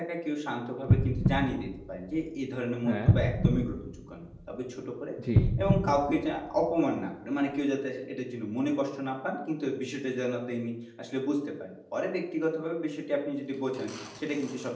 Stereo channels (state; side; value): identical; both; correlation 1.00